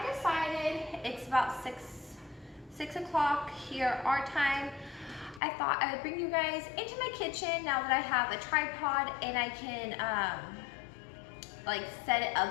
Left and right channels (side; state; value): right; drops out; at 5.4 s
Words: decided it's about 6 o'clock here our time. I thought I would bring you guys into my kitchen now that I have a tripod and I can like set it